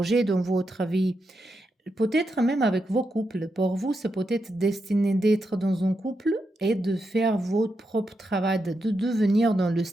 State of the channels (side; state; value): both; normal; correlation 0.85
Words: dans votre vie. Peut-être même avec vos couples. Pour vous, c'est peut-être destiné d'être dans un couple et de faire votre propre travail, de devenir dans le